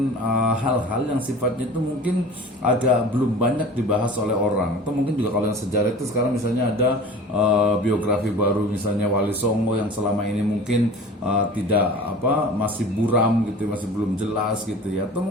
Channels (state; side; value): normal; both; correlation 0.40